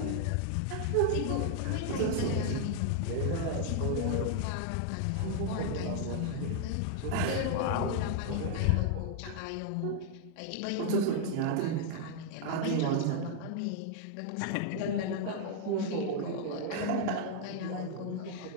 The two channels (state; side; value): different; both; correlation 0.00